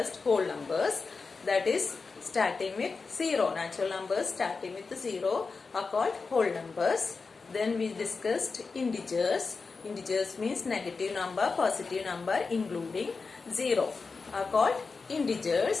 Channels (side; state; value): right; quieter; 4.5 dB